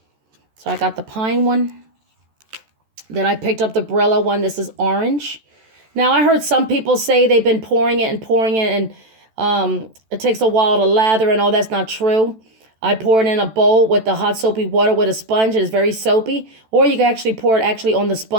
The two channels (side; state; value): left; late; 14 ms